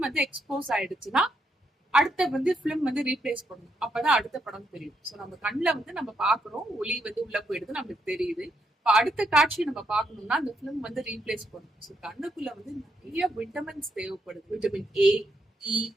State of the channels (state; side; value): normal; both; correlation 0.78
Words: வந்து எக்ஸ்போஸ் ஆயிடுச்சுன்னா அடுத்த வந்து ஃபிலிம் வந்து ரீப்ளேஸ் பண்ணணும். அப்பதான் அடுத்த படம் தெரியும். ஸோ நம்ம கண்ணில் வந்து நம்ம பாக்குறோம், ஒளி வந்து உள்ள போயிடுது, நம்மளுக்கு தெரியுது. இப்போ அடுத்த காட்சி நம்ம பார்க்கணும்னா அந்த ஃபிலிம் வந்து ரீப்ளேஸ் பண்ணணும். ஸோ கண்ணுக்குள்ள வந்து நிறைய விட்டமின்ஸ் தேவைப்படுது. விட்டமின் ஏ, இ,